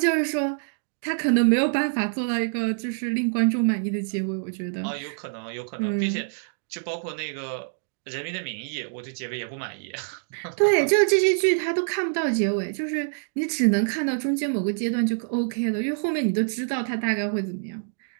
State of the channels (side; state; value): left; silent; digital silence